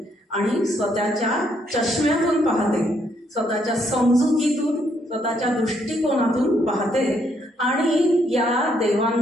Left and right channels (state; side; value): normal; both; correlation 0.72